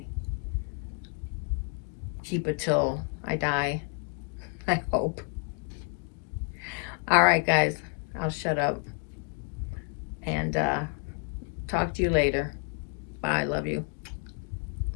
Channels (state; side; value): quieter; right; 36.5 dB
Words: keep it till I die, I hope. All right, guys, I'll shut up and talk to you later. Bye, love you.